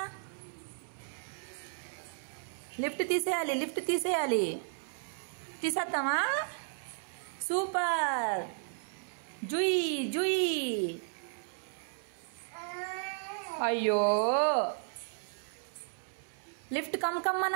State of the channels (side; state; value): left; silent; 55 dB below the other